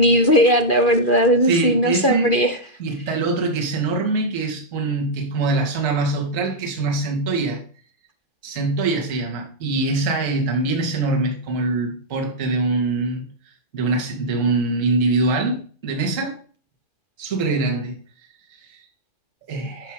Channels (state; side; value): late; right; 2.4 ms